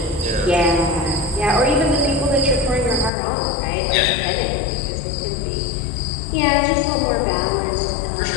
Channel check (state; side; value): drops out; right; at 3.1 s